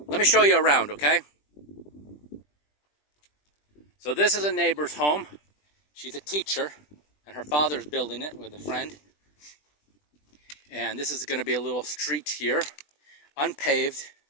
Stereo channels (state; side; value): late; right; 20 ms